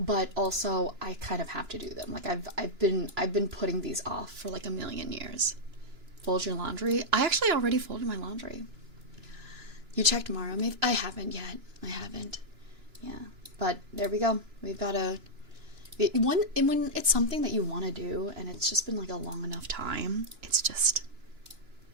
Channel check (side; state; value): left; late; 2.9 ms